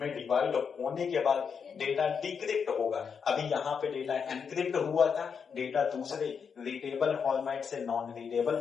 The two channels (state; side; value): quieter; right; 6.4 dB